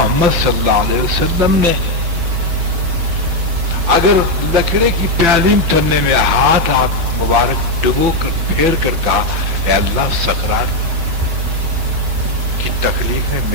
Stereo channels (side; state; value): left; late; 5.7 ms